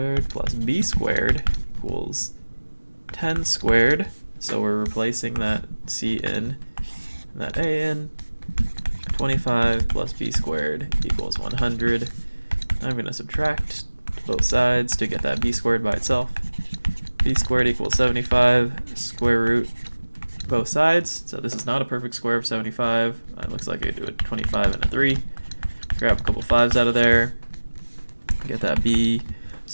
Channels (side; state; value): both; inverted; correlation -1.00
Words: plus B squared equals 10 squared, so we're replacing that C in and that A in. 25 plus B squared equals 100. I'm going to subtract both sides to get that B squared by itself. B squared equals 75, square root both sides, so this is not a perfect square of 75. It looks like I do a 25 and a 3. Grab a couple 5s out of there, get that B.